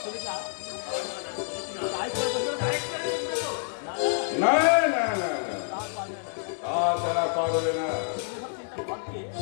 না না না না, তা তারা পারবে না।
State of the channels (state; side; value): silent; right; digital silence